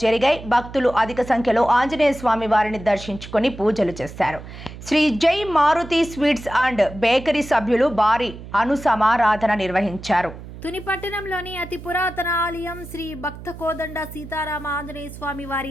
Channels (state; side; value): noise; right; hum, 14 dB below the sound